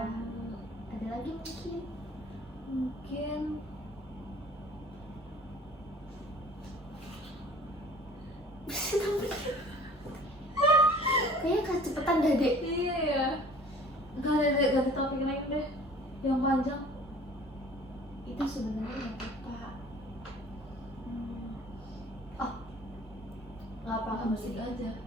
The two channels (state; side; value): normal; both; correlation 0.49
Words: ada lagi mungkin. Mungkin Kayaknya kecepatan dah dek. iya ya. Ganti topik lain deh. Yang panjang. Itu sebenarnya nggak apa. Oh, nggak apa kamu Musik gini. aja.